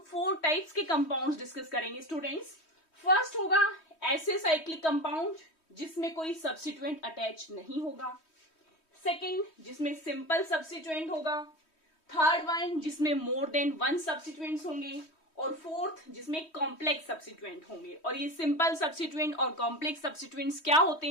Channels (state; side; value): late; right; 3.1 ms